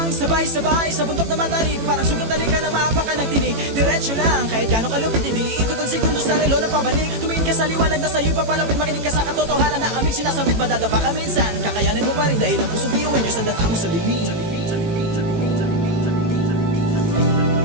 sabay-sabay sa bundok na matarik. Parang sugat na lika na maapakan ng tinig. Diretso lang, kahit gano'ng kalupit, hindi ikot ang segundo sa relo na pabalik. Tumingin ka sa liwanag na sa'yo'y papalapit. Makinig ka sa katotohanan na aming sinasabit. Madadapa ka minsan, kakayanin mo pa rin dahil ang pusong biyuin nyo sa data mo sa dilim.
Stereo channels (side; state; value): left; late; 18 ms